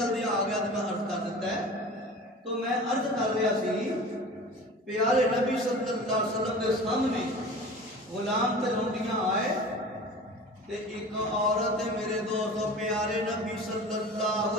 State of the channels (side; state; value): both; normal; correlation 0.38